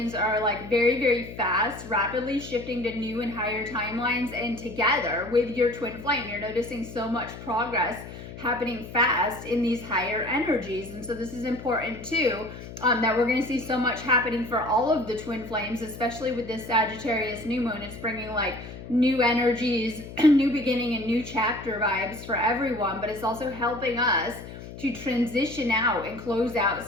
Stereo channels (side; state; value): left; noise; hum, 13 dB below the sound